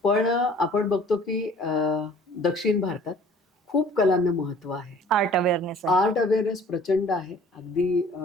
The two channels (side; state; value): both; normal; correlation 0.51